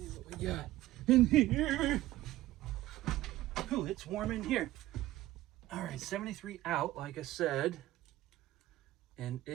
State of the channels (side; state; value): left; quieter; 15.9 dB